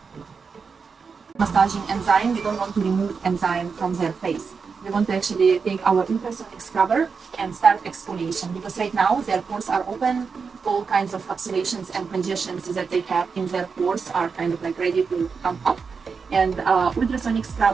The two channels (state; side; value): quieter; left; 5.4 dB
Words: Massaging enzyme, we don't want to remove enzyme from their face. We want to actually take our ultrasonic scrubber and start exfoliation, because right now their pores are open, all kinds of obstructions and congestions that they have in their pores are kind of like ready to come up. And ultrasonic